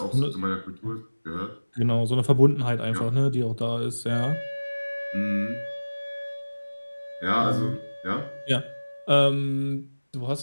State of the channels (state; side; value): inverted; both; correlation -1.00